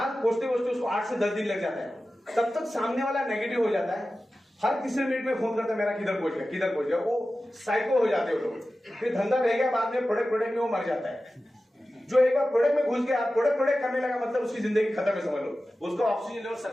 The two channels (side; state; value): both; normal; correlation 0.94